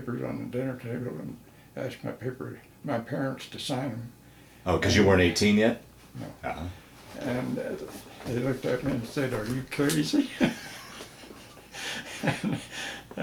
on the dinner table and asked my parents to sign them. Oh, because you weren't 18 yet? No. Uh-huh. And they looked at me and said, "Are you crazy?"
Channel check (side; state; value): both; identical; correlation 1.00